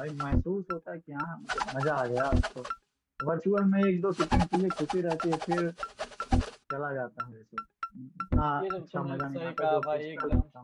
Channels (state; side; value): identical; both; correlation 1.00